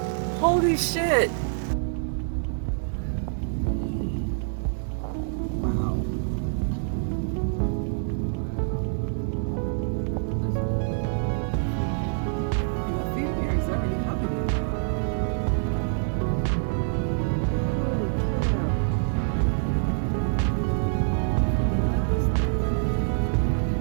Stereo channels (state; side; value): silent; left; digital silence